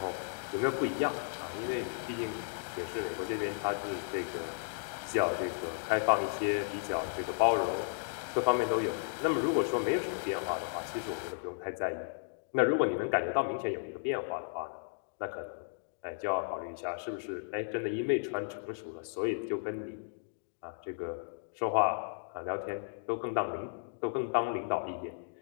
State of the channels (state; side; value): silent; right; digital silence